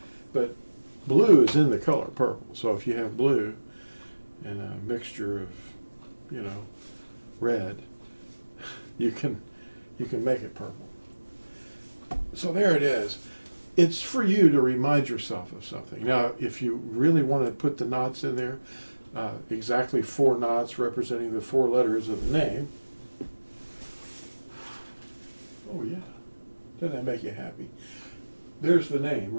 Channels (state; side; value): inverted; both; correlation -1.00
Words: But blue is in the color purple. So if you have blue and a mixture of, red, you can make it purple. So there it is. It's for you to remind yourself of something. Now, if you really want to put the knots in there, exactly 4 knots representing the 4 letters of the name. Oh yeah, doesn't that make you happy? There's the name